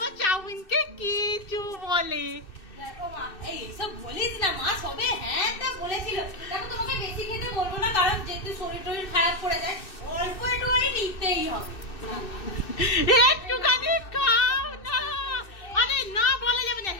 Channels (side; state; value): right; late; 2.6 ms